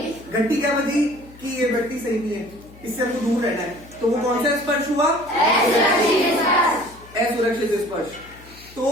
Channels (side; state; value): left; noise; hum, 22 dB below the sound